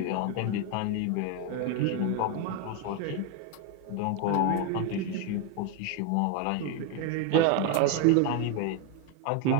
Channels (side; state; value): both; different; correlation 0.01